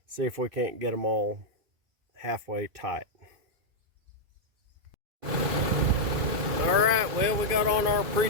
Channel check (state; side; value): late; left; 2.5 ms